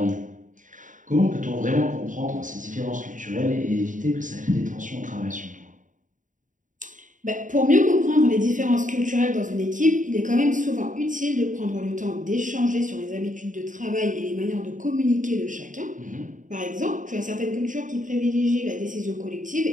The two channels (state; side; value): late; left; 0.37 ms